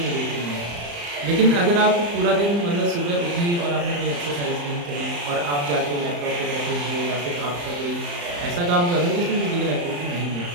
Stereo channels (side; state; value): left; late; 35 ms